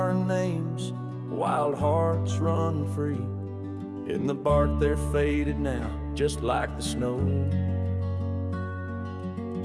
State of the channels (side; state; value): both; identical; correlation 1.00